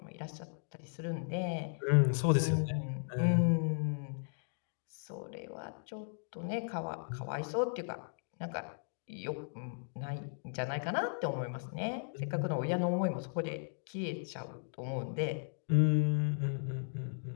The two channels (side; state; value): right; silent; digital silence